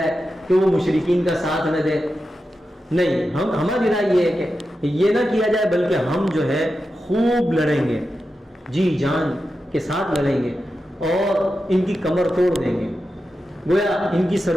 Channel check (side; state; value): both; normal; correlation 0.90